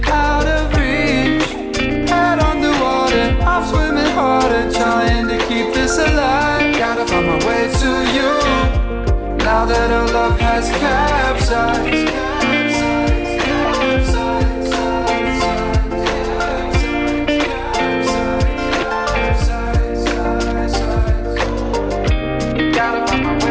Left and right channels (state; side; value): identical; both; correlation 1.00